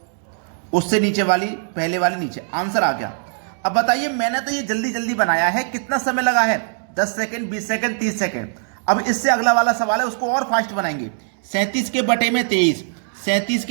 उससे नीचे वाली पहले वाली नीचे। आंसर आ गया। अब बताइए, मैंने तो ये जल्दी जल्दी बनाया है, कितना समय लगा है? 10 सेकंड, 20 सेकंड, 30 सेकंड। अब इससे अगला वाला सवाल है, उसको और फास्ट बनाएंगे। 37 के बटे में 23, 37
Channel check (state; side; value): silent; left; digital silence